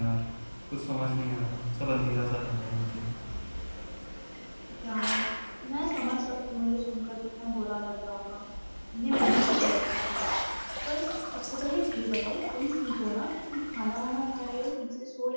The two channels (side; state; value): both; inverted; correlation -1.00